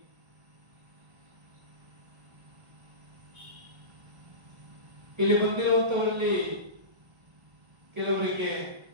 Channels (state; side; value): late; left; 1.3 ms